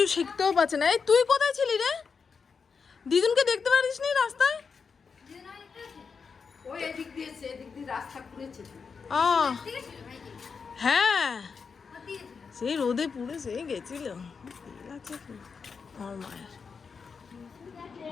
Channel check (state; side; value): quieter; right; 5.5 dB